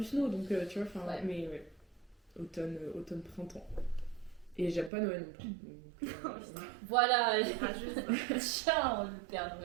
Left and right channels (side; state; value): left; drops out; at 4.9 s